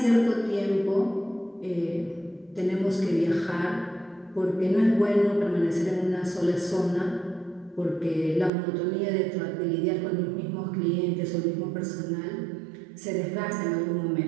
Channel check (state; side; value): drops out; left; at 8.5 s